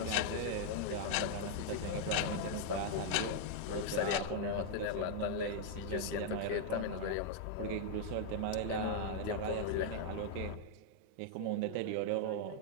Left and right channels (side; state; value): both; different; correlation 0.00